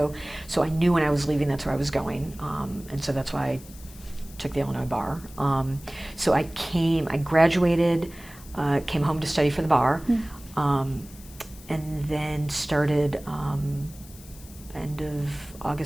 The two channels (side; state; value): left; noise; hiss, 20 dB below the sound